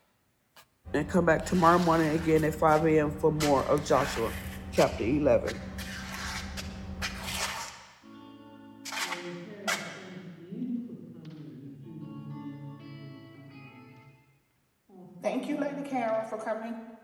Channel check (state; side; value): identical; both; correlation 1.00